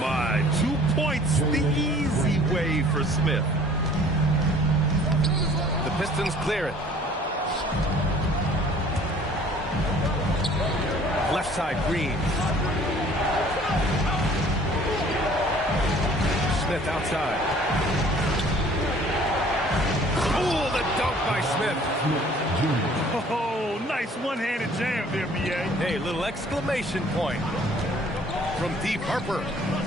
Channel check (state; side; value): normal; both; correlation 0.53